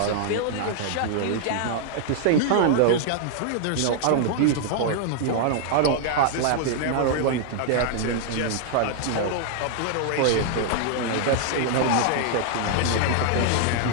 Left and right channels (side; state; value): both; different; correlation -0.01